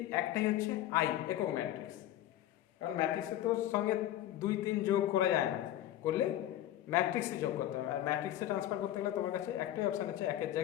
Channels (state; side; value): quieter; right; 12.9 dB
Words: একটাই হচ্ছে আই, একক ম্যাট্রিক্স। কারণ ম্যাট্রিক্সের তো সঙ্গে 2 3 যোগ করা যায় না, করলে ম্যাট্রিক্সে যোগ করতে হবে। আর ম্যাট্রিক্সে ট্রান্সফার করতে গেলে তোমার কাছে একটাই অপশান আছে, একের